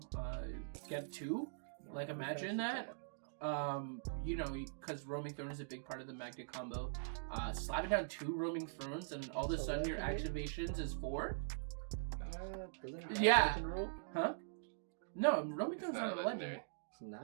get 2, like imagine that. Because Roaming Throne is a big part of the Magda combo. Slapping down 2 Roaming Thrones and all of a sudden your activations is 4. Yeah. Huh? No, Roaming Throne's not a legendary. It's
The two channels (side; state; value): left; silent; digital silence